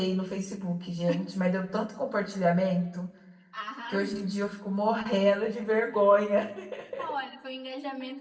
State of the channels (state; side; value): identical; both; correlation 1.00